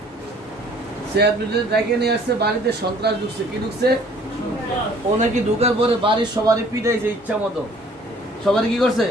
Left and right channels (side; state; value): both; normal; correlation 0.55